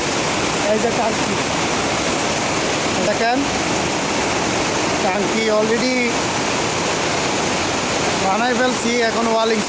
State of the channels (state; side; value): identical; both; correlation 1.00